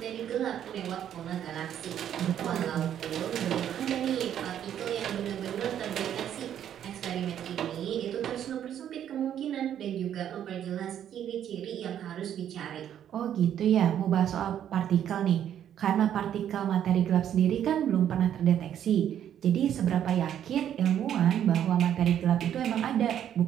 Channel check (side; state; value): left; quieter; 10.1 dB